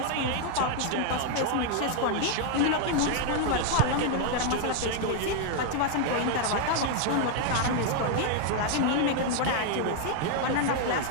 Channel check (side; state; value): both; different; correlation 0.00